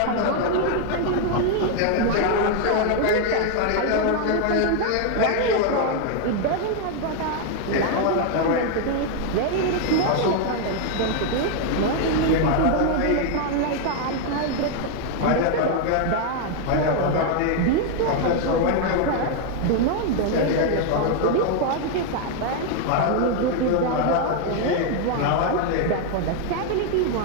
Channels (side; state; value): both; different; correlation 0.00